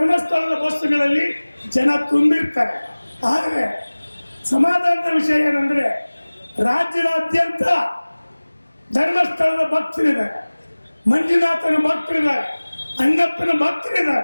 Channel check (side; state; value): both; inverted; correlation -1.00